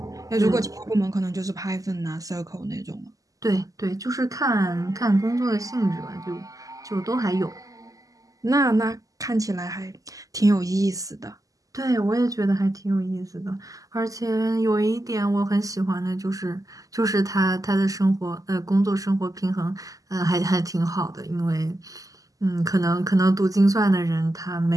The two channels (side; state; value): left; late; 0.17 ms